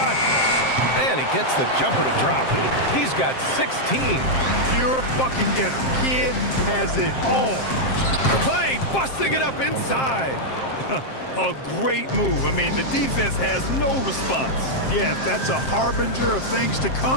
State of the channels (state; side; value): late; right; 7.6 ms